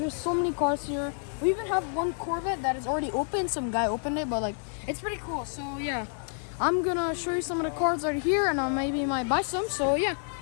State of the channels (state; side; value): silent; right; 59 dB below the other